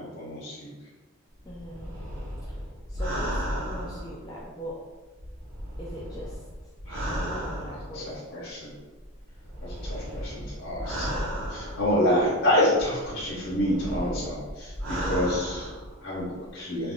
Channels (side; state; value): both; normal; correlation 0.23